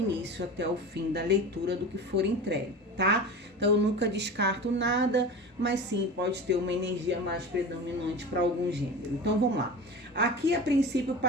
até o fim da leitura do que for entregue, tá? Então eu nunca descarto nada, mas sim, pode ter uma energia mais predominante para algum gênero. Então vamos lá. Aqui a princípio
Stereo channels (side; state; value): both; normal; correlation 0.31